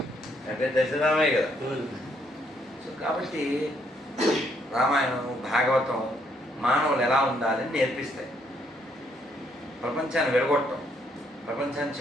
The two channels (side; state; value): both; normal; correlation 0.71